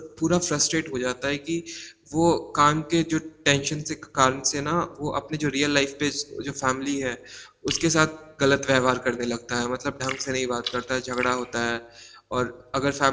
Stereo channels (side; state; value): both; identical; correlation 1.00